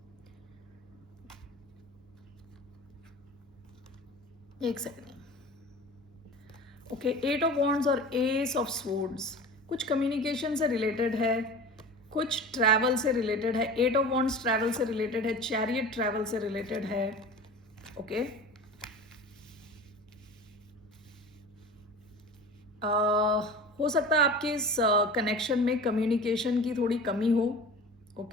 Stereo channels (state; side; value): normal; both; correlation 0.36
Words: एक सेकंड, ओके, 8 ऑफ वॉन्ड्स और एस ऑफ स्वॉर्ड्स कुछ कम्युनिकेशन से रिलेटेड है, कुछ ट्रैवल से रिलेटेड है। 8 ऑफ वॉन्ड्स ट्रैवल से रिलेटेड है, चैरियट ट्रैवल से रिलेटेड है। ओके, हो सकता है आपके इस कनेक्शन में कम्युनिकेशन की थोड़ी कमी हो।